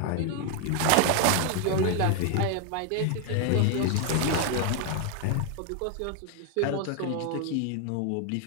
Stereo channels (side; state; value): both; different; correlation 0.01